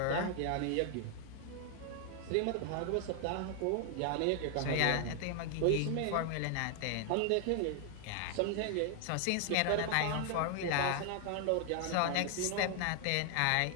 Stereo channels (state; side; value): different; both; correlation 0.00